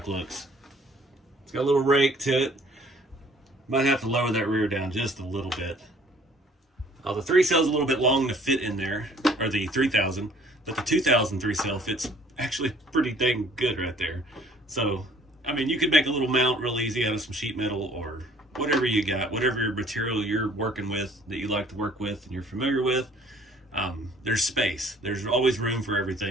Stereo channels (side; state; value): both; normal; correlation 0.56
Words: looks. It's got a little rake to it. Might have to lower that rear down just a little bit. The 3-cell's a little bit long to fit in there, or the 3000, but the 2000 3-cell fits actually pretty dang good right there. So, I mean, you could make a little mount real easy out of some sheet metal or whatever you got, whatever material you're working with that you like to work with and you're familiar with. There's space. There's always room for